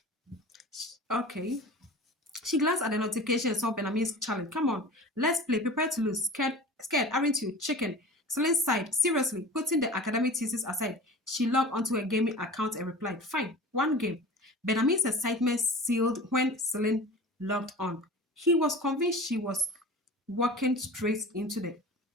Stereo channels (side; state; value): both; normal; correlation 0.37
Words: She glanced at the notification and saw Benjamin's challenge. Come on, let's play. Prepare to lose. Scared, aren't you? Chicken. Celine sighed. Seriously, putting the academic thesis aside, she logged onto her gaming account and replied, fine, one game. Benjamin's excitement sealed when Celine logged on. He was convinced she was walking straight into the